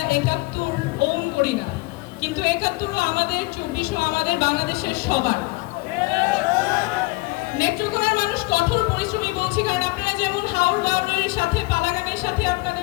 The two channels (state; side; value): quieter; right; 24.5 dB